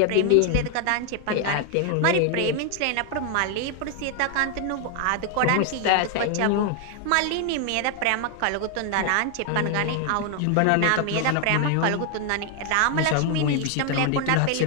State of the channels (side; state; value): both; different; correlation 0.00